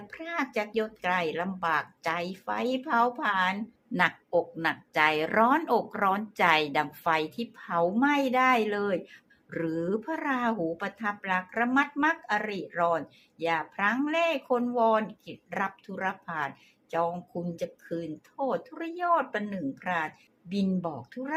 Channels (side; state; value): both; identical; correlation 1.00